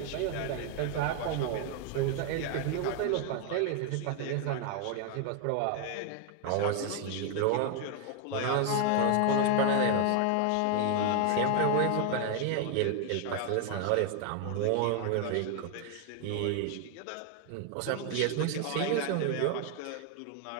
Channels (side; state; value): both; different; correlation 0.00